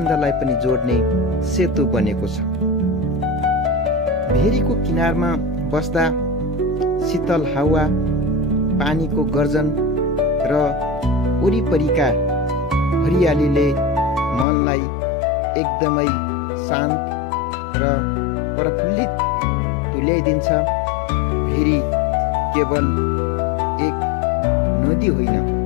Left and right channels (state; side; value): drops out; right; at 14.5 s